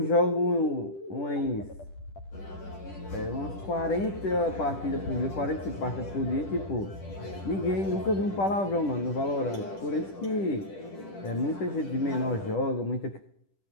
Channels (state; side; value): late; right; 10 ms